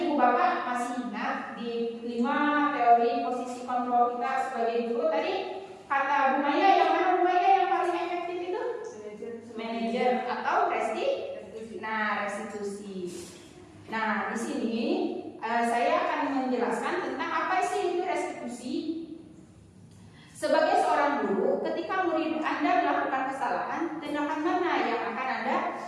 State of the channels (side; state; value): both; identical; correlation 1.00